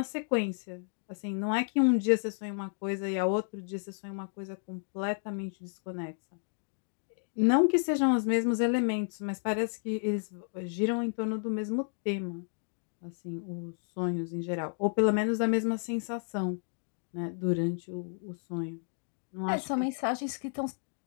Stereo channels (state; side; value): silent; right; digital silence